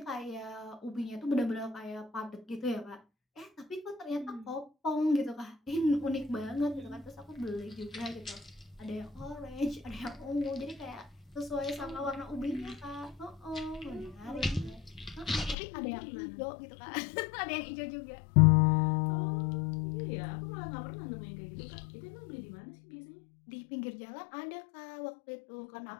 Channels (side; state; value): right; drops out; at 15.6 s